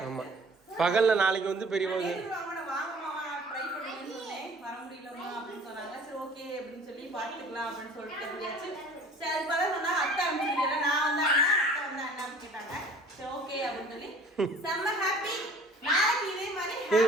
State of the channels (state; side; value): normal; both; correlation 0.49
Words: ஆமா பகல்ல நாளைக்கு வந்து பெரியவங்க வாங்க மாமா ட்ரை பண்ணுன்னு சொன்னேன். வர முடியலமா அப்படின்னு சொன்னாங்க. சரி ஓகே அப்படின்னு சொல்லி பார்த்துக்கலாம் அப்படின்னு சொல்லிட்டு சொல்லியாச்சு. சரி அதுக்கு பதில் சொன்னாங்க அத்தை அப்படின்னு. நான் வந்தாங்க அத்தை வந்தா என்னன்னு கேட்டாங்க. சரி ஓகே அப்படின்னு சொல்லி செம்ம ஹாப்பி. நாளைக்கு இதே மாதிரி